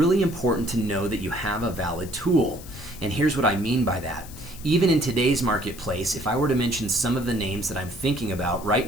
important to know that you have a valid tool. And here's what I mean by that. Even in today's marketplace, if I were to mention some of the names that I'm thinking about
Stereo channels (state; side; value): noise; left; hiss, 17 dB below the sound